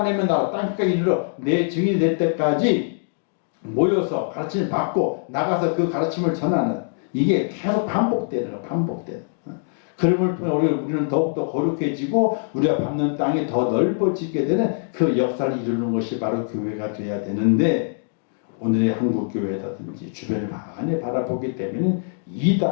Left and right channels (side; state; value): right; silent; digital silence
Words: 나라 땅까지 이르러 내 증인이 될 때까지 모여서 가르침을 받고 나가서 그 가르침을 전하는 이게 계속 반복되는 거예요. 반복되는. 그럼을 통해 우리는 더욱더 거룩해지고 우리가 밟는 땅이 더 넓어지게 되는 그 역사를 이루는 것이 바로 교회가 돼야 되는데 오늘의 한국 교회라든지 주변을 많이 바라보기 때문에